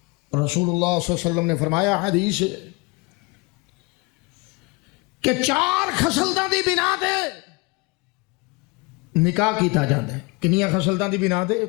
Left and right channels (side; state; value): right; quieter; 26.9 dB